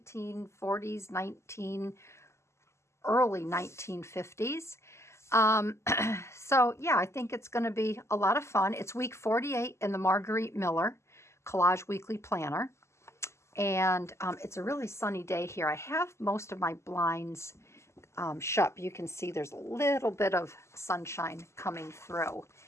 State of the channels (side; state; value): right; late; 0.13 ms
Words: early 1950s. So yeah, I think it's going to be a lot of fun. It's week 48 in the Margarete Miller Collage Weekly Planner, and it's a really sunny day here. I have most of my blinds shut. You can see there's a little bit of sunshine coming through,